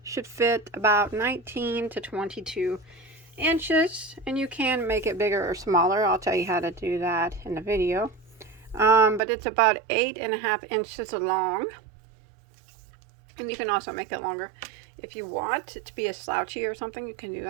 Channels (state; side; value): drops out; left; at 9.2 s